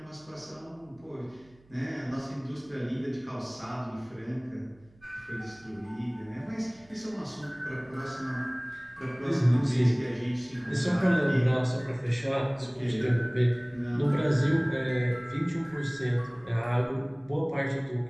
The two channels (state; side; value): noise; right; hum, 29 dB below the sound